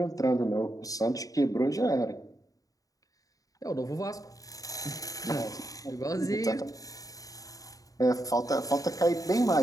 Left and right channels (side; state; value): right; late; 0.17 ms